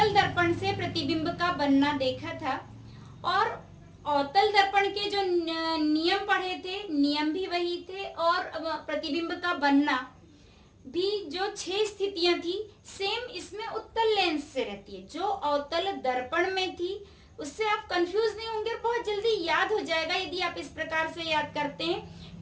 दर्पण से प्रतिबिंब का बनना देखा था और अवतल दर्पण के जो नियम पढ़े थे, नियम भी वही थे और प्रतिबिंब का बनना भी जो 6 स्थितियां थी सेम इसमें उत्तल लेंस से रहती है। जो अवतल दर्पण में थी उससे आप कंफ्यूज नहीं होंगे, बहुत जल्दी याद हो जाएगा यदि आप इस प्रकार से याद करते हैं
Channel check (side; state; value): both; identical; correlation 1.00